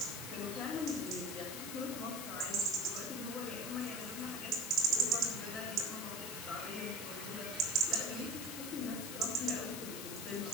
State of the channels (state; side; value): noise; left; hiss, 7 dB below the sound